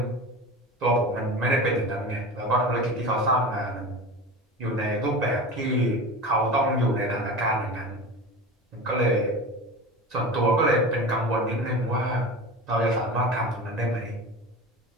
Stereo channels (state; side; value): normal; both; correlation 0.31